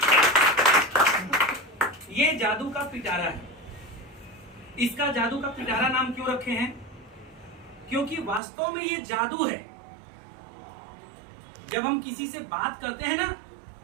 ये जादू का पिटारा है। इसका जादू का पिटारा नाम क्यों रखे हैं? क्योंकि वास्तव में ये जादू है। जब हम किसी से बात करते हैं ना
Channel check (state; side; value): drops out; left; at 8.4 s